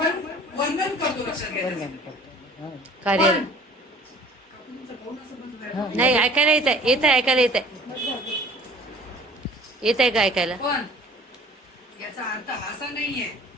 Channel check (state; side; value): normal; both; correlation 0.50